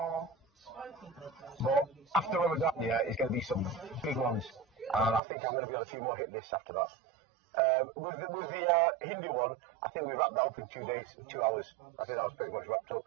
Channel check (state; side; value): drops out; left; at 5.2 s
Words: But after Ramadan, yeah, it's going to be some big ones. And I think I'm going to be on a few more hit lists after that. With the Hindu one, I think we wrapped that up in 2 days, 2 hours. I think that was pretty much wrapped up.